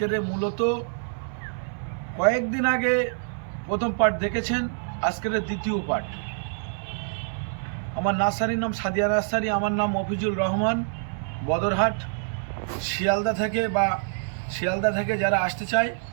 মূলত কয়েকদিন আগে প্রথম পার্ট দেখেছেন, আজকের দ্বিতীয় পার্ট। আমার নার্সারির নাম সাদিয়া নার্সারি, আমার নাম মফিজুল রহমান, বদরহাট, শিয়ালদা থেকে যারা আসতে চায়,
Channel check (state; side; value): silent; left; 61 dB below the other